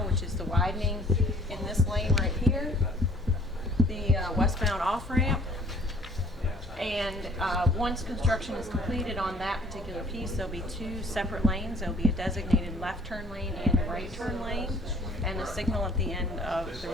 which is the widening in this lane right here, the westbound off-ramp. And once construction is completed on that particular piece, there'll be 2 separate lanes. There'll be a designated left turn lane and a right turn lane, and a signal at the end of the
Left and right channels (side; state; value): both; normal; correlation 0.55